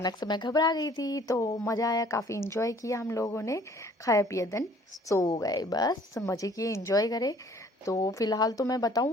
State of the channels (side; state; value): both; normal; correlation 0.56